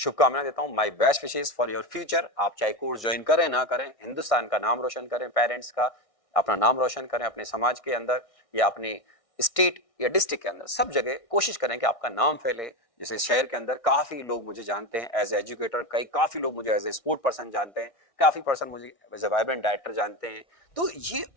देता हूं, my best wishes for your future. आप चाहे कोर्स ज्वाइन करें ना करें, हिंदुस्तान का नाम रोशन करें, पेरेंट्स का अपना नाम रोशन करें, अपने समाज के अंदर या अपने स्टेट या डिस्ट्रिक्ट के अंदर, सब जगह कोशिश करें कि आपका नाम फैले। जैसे शहर के अंदर काफी लोग मुझे जानते हैं एज एजुकेटर, काफी लोग मुझे एज ए स्पोर्ट पर्सन जानते हैं, काफी पर्सन मुझे एज ए वाइब्रेंट डायरेक्टर जानते हैं। तो ये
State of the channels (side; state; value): right; late; 1.6 ms